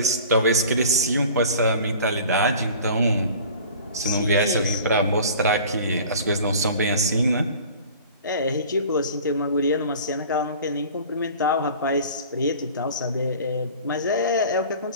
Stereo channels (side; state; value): both; inverted; correlation -0.43